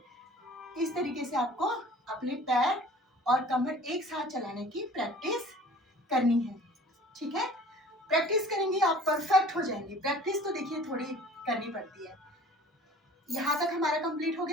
इस तरीके से आपको अपने पैर और कमर एक साथ चलाने की प्रैक्टिस करनी है। ठीक है, प्रैक्टिस करेंगे आप परफेक्ट हो जाएंगे। प्रैक्टिस तो देखिए थोड़ी करनी पड़ती है। यहाँ तक हमारा कंप्लीट हो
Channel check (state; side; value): normal; both; correlation 0.47